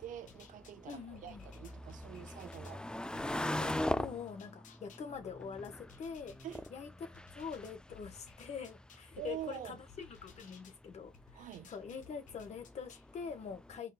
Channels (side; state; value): both; normal; correlation 0.72